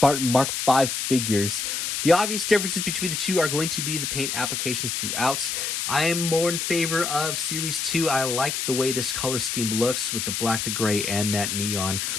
Mark V figures. The obvious differences between the two are going to be the paint applications throughout. I am more in favor of Series 2. I like the way this color scheme looks with the black, the gray, and that neon.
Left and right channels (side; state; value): left; noise; hiss, 2 dB below the sound